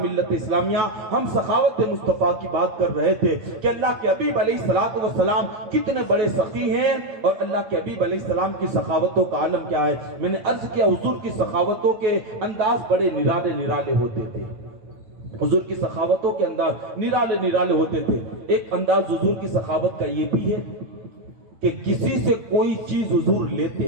ملت اسلامیہ ہم سخاوت مصطفیٰ کی بات کر رہے تھے کہ اللہ کے حبیب علیہ الصلوۃ والسلام کتنے بڑے سخی ہیں اور اللہ کے حبیب علیہ السلام کی سخاوتوں کا عالم کیا ہے. میں نے عرض کیا حضور کی سخاوتوں کے انداز بڑے نرالے نرالے ہوتے تھے. حضور کی سخاوتوں کے انداز نرالے نرالے ہوتے تھے. ایک انداز حضور کی سخاوت کا یہ بھی ہے کہ کسی سے کوئی چیز حضور لیتے,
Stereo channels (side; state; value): left; late; 8.8 ms